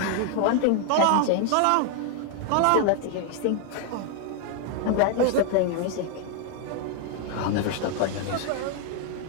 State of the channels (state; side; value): different; both; correlation 0.00